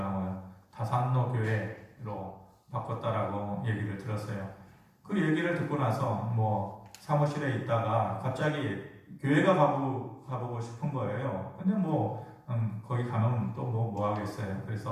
다산로 교회로 바꿨다라고 얘기를 들었어요. 그 얘기를 듣고 나서 사무실에 있다가 갑자기 교회가 가보고 싶은 거예요. 근데 거기 가면 또 뭐 하겠어요.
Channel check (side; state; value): both; identical; correlation 1.00